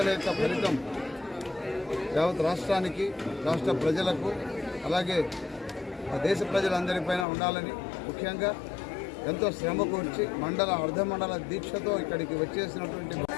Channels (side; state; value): right; drops out; at 7.2 s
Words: యొక్క ఫలితం యావత్ రాష్ట్రానికి, రాష్ట్ర ప్రజలకు, అలాగే దేశ ప్రజలందరిపైన ఉండాలని, ముఖ్యంగా ఎంతో శ్రమ కూర్చి మండల అర్ధమండల దీక్షతో ఇక్కడికి వచ్చేసినటువంటి